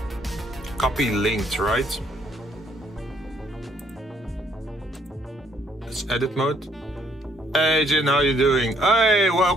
Copy linked, right? Let's edit mode. Hey Jinn, how you doing? Hey,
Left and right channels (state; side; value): normal; both; correlation 0.67